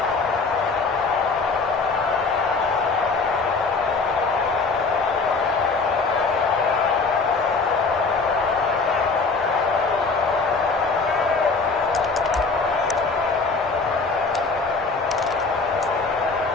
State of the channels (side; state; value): right; quieter; 4.2 dB